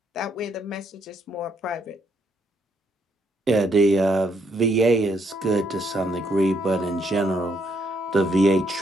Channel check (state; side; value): normal; both; correlation 0.73